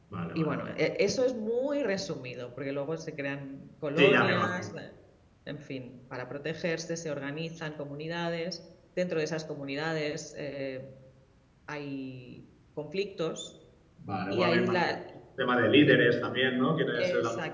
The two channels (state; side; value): identical; both; correlation 1.00